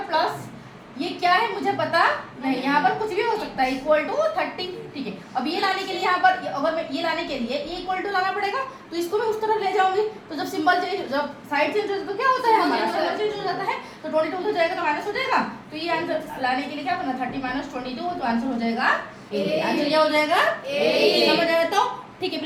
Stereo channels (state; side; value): identical; both; correlation 1.00